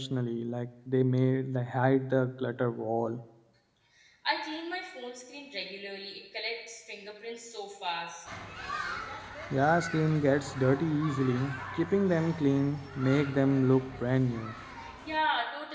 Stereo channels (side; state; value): both; identical; correlation 1.00